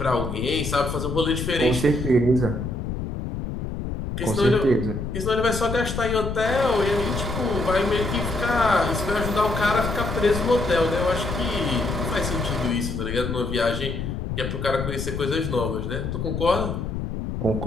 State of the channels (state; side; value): noise; left; rumble, 4 dB below the sound